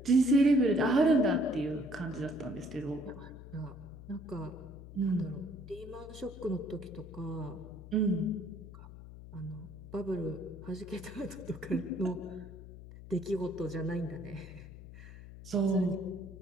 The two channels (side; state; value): left; noise; hum, 15 dB below the sound